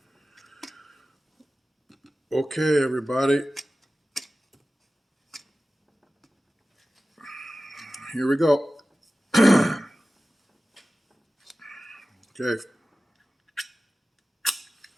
Okay, everybody. Here we go. Okay.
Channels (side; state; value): both; normal; correlation 0.96